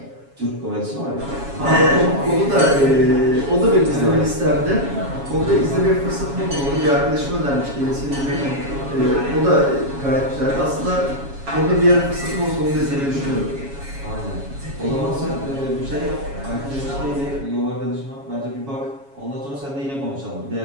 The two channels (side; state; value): left; late; 7.2 ms